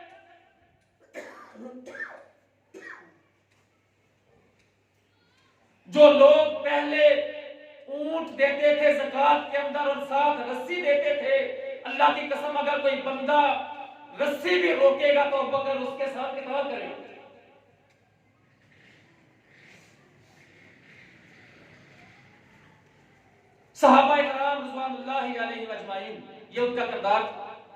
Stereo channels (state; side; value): identical; both; correlation 1.00